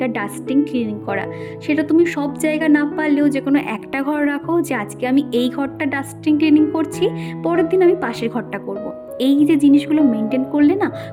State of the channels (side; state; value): both; identical; correlation 1.00